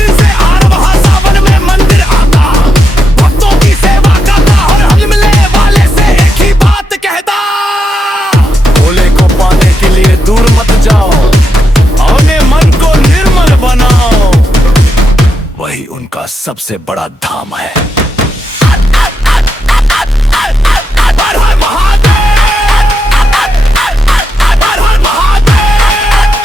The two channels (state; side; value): normal; both; correlation 0.84